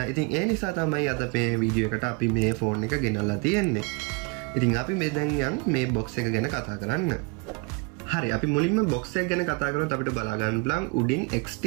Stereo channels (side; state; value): left; quieter; 30.9 dB